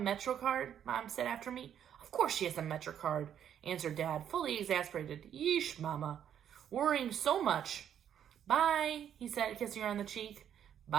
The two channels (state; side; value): quieter; left; 9.4 dB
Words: card? Mom said after me. Of course she has a Metro card, answered Dad, fully exasperated. Yeesh, Mama. Worrying so much. Bye, he said, kissing her on the cheek.